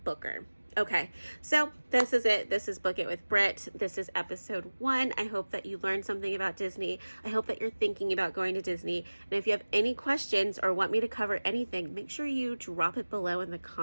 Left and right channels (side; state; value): both; inverted; correlation -1.00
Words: booker. Okay, so this is it. This is Book It with Britt. This is episode 1. I hope that you learned something about Disney. I hope that you're thinking about going to Disney. And if you have any questions or want me to cover anything, make sure you drop it below in the